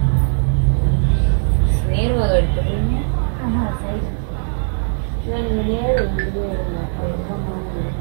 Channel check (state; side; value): silent; left; digital silence